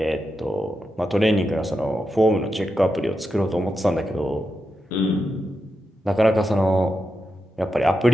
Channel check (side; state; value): both; normal; correlation 0.87